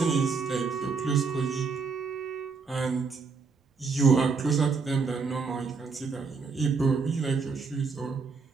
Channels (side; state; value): left; quieter; 4.9 dB